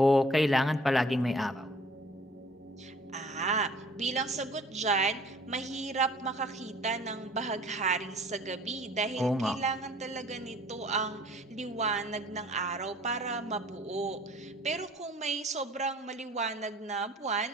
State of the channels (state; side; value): normal; both; correlation 0.52